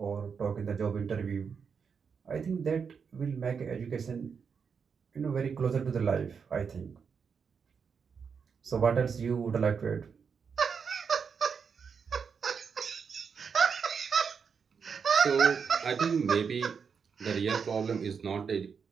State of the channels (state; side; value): quieter; left; 6.2 dB